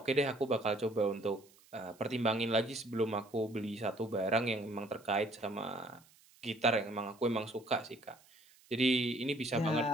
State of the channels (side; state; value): right; noise; hiss, 28 dB below the sound